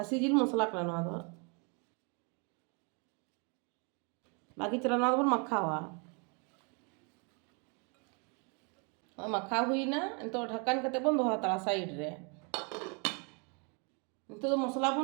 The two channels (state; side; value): quieter; left; 34.9 dB